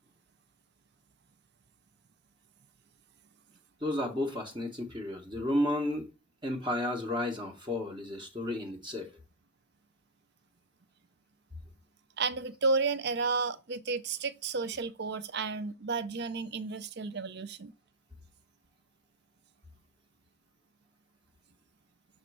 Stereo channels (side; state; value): both; normal; correlation 0.12